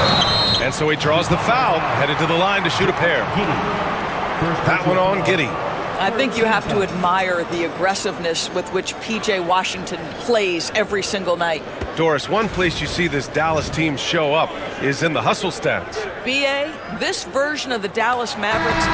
And so he draws the foul, headed to the line to shoot a pair. That one on Giddey. I think you have to admire the aggressiveness with which P.J. Washington plays every single night. Doris, one place you see this Dallas team show up is in the hustle stats. B.A., this version of the Dallas Mavericks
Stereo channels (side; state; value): both; identical; correlation 1.00